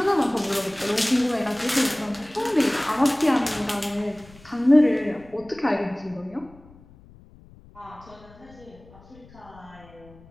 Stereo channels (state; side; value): noise; left; rumble, 24 dB below the sound